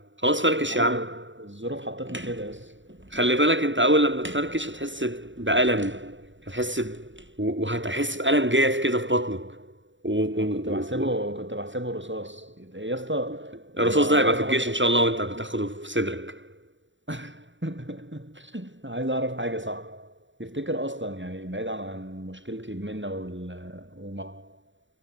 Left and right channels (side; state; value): left; late; 0.55 ms